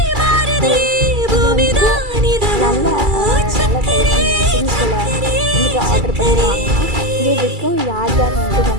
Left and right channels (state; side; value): late; left; 2.3 ms